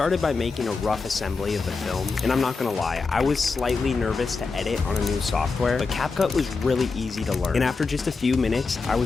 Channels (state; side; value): quieter; right; 4.4 dB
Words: by making a rough assembly of the film, and I'm not gonna lie, I was slightly nervous to edit on a new software, but CapCut was really easy to learn. And after just a few minutes, I